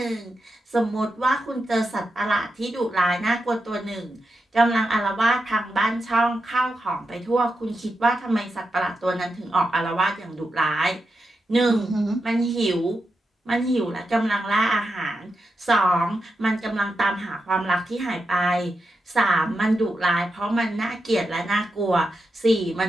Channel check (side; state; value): both; normal; correlation 0.88